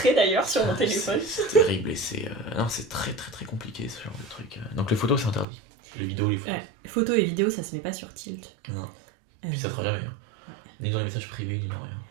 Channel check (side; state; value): left; drops out; at 5.5 s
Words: d'ailleurs sur mon téléphone. C'est terrible et c'est... Non, c'est très très très compliqué ce genre de truc. Donc les photos, c'est interdit. Les vidéos, les photos. Photos et vidéos, ça se met pas sur Tilt. Non. Puis ça sera jamais. Hein. Ni dans les messages privés, ni dans rien.